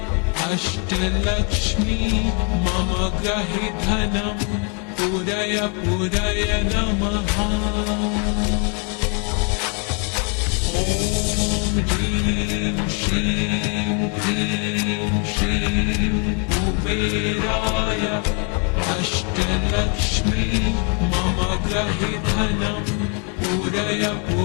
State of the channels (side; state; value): right; quieter; 36.1 dB